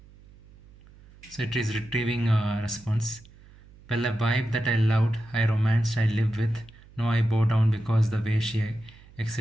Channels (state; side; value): noise; right; hum, 24 dB below the sound